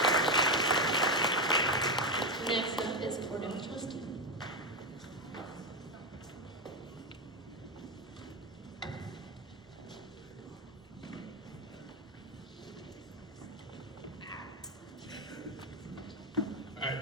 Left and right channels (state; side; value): normal; both; correlation 0.12